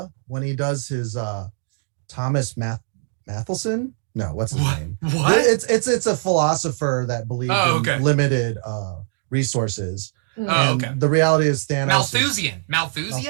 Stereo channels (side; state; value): left; silent; digital silence